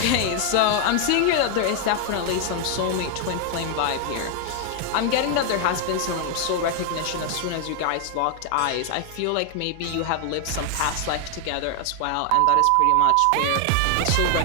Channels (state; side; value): different; both; correlation 0.00